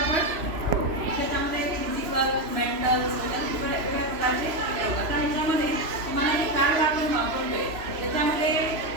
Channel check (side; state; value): left; late; 3.0 ms